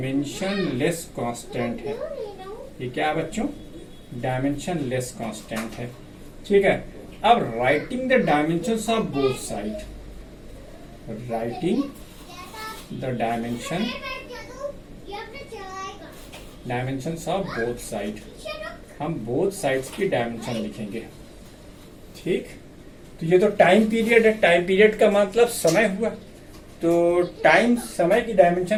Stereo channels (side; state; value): both; identical; correlation 1.00